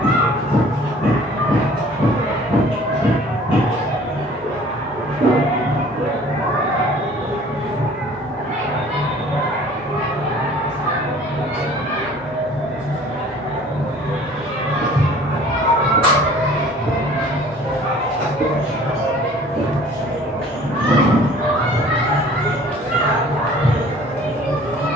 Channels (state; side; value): normal; both; correlation 0.50